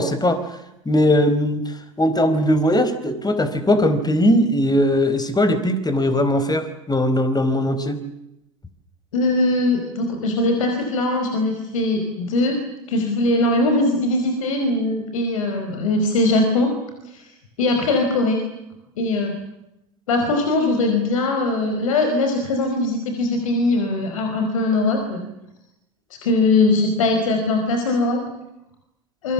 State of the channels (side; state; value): both; normal; correlation 0.31